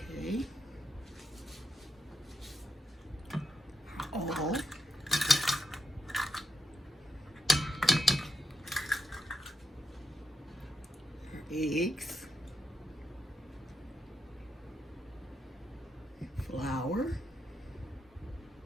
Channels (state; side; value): normal; both; correlation 0.84